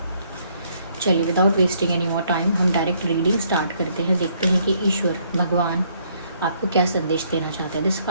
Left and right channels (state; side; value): inverted; both; correlation -0.68